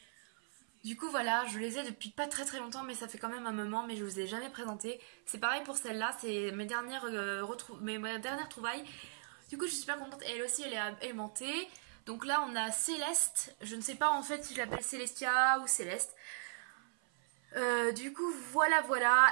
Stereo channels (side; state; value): left; silent; 53 dB below the other